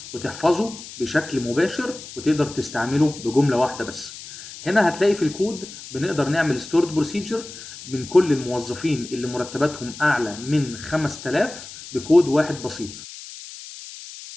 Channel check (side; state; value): left; noise; hiss, 14 dB below the sound